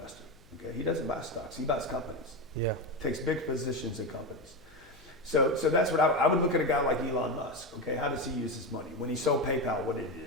Okay, he doesn't buy stocks. He buys companies. Yeah. Takes big positions in companies. So that's what I would look at a guy like Elon Musk. Okay, how does he use his money? When he sold PayPal, what did he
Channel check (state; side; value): noise; left; hum, 28 dB below the sound